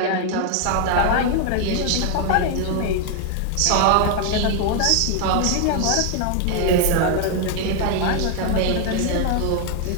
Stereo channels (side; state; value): both; different; correlation 0.00